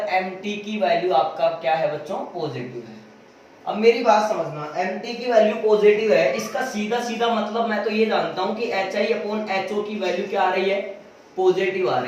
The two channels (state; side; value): identical; both; correlation 1.00